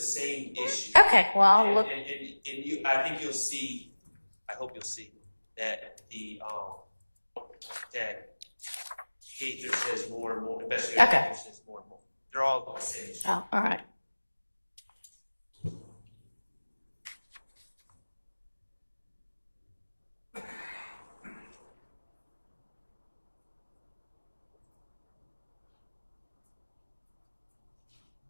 issue. Okay, well, I'll look. And you, I think you'll see, I hope you'll see that that Gaither says more and more, especially Okay. Gaither says more and more. They're all the same issue. Oh, all right.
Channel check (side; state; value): both; inverted; correlation -1.00